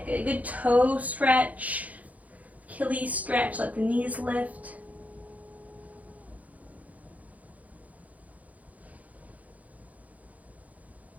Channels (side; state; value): left; late; 0.073 ms